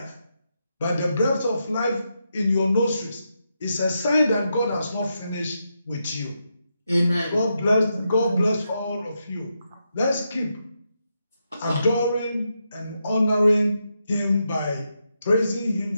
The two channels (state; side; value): inverted; both; correlation -0.84